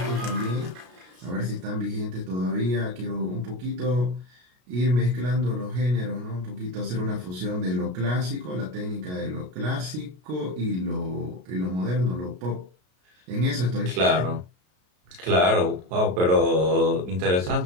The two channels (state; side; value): late; left; 33 ms